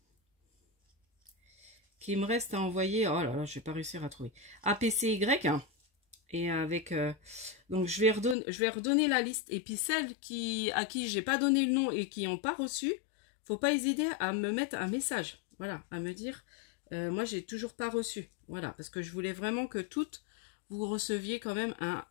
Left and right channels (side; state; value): right; drops out; at 8.3 s